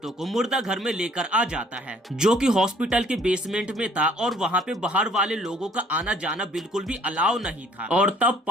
को मुर्दा घर में लेकर आ जाता है, जो कि हॉस्पिटल के बेसमेंट में था और वहाँ पे बाहर वाले लोगों का आना जाना बिल्कुल भी अलाउ नहीं था। और तब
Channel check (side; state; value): both; normal; correlation 0.59